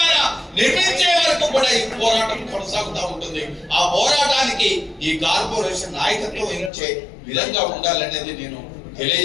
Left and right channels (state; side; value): drops out; right; at 6.7 s